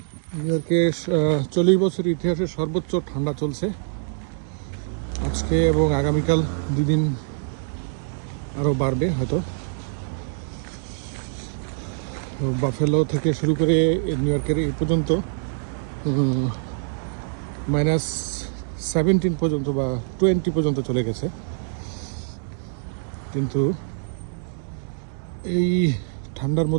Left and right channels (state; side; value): silent; left; 62 dB below the other